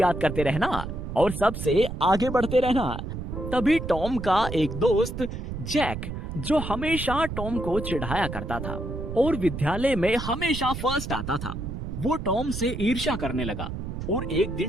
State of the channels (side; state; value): right; noise; rumble, 6 dB below the sound